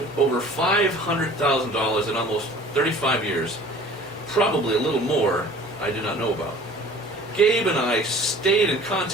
over $500,000 in almost 35 years, probably a little more I do not know about. Gabe and I stayed in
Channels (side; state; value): both; normal; correlation 0.47